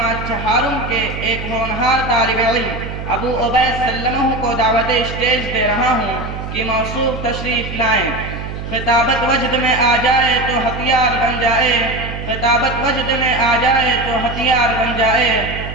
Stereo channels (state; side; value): noise; right; hum, 8 dB below the sound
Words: چہارم کے ایک ہونہار طالب علم ابو عبید سلمہ کو دعوت اسٹیج دے رہا ہوں کہ موصوف تشریف لائیں۔ خطابت وجد میں آ جائے تو ہتھیار بن جائے، خطابت وجد میں آ جائے تو ہتھیار بن جائے،